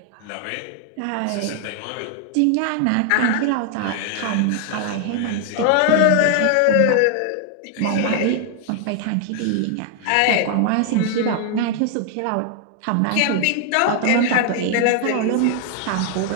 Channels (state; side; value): different; both; correlation 0.00